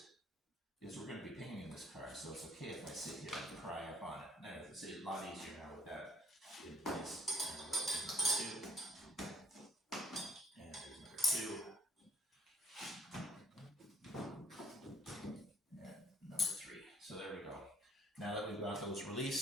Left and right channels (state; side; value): normal; both; correlation 0.61